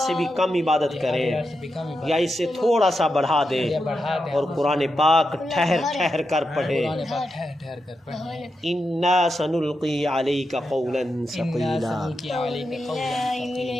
بھی کم عبادت کرے یا اس سے تھوڑا سا بڑھا دے، اور قرآن پاک ٹھہر ٹھہر کر پڑھے۔ انا سنلقی علیک قولا ثقیلا۔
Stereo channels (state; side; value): normal; both; correlation 0.87